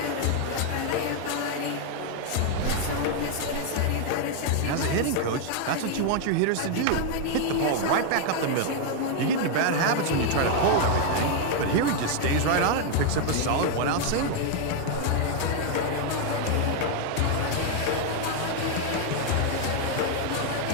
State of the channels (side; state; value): both; different; correlation 0.00